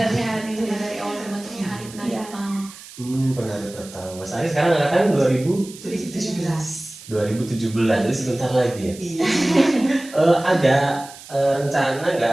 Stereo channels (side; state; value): right; noise; hiss, 17 dB below the sound